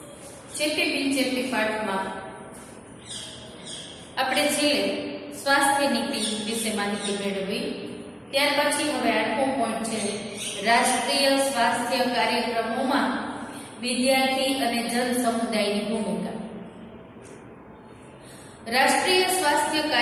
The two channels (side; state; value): both; identical; correlation 1.00